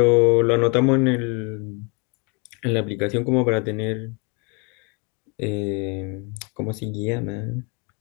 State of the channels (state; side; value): quieter; right; 32.7 dB